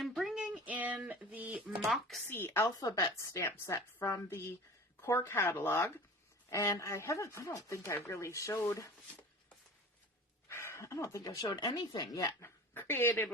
bringing in the Moxie alphabet stamp set from the core catalog. And I don't think I've showed anything yet created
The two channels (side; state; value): both; normal; correlation 0.38